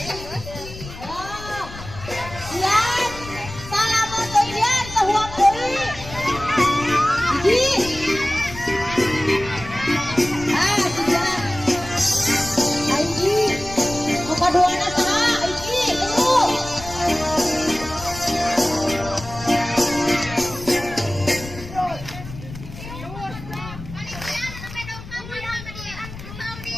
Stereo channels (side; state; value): left; noise; rumble, 13 dB below the sound